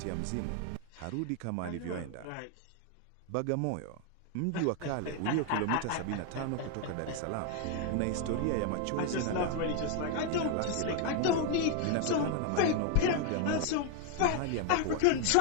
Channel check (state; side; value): different; both; correlation 0.00